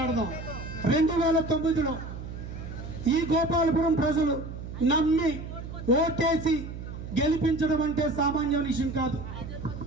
2009లో ఈ గోపాలపురం ప్రజలు నమ్మి ఓటేసి గెలిపించడం అంటే సామాన్య విషయం కాదు.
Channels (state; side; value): noise; right; hum, 9 dB below the sound